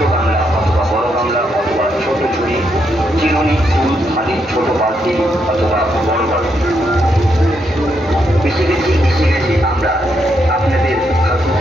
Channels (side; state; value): both; normal; correlation 0.78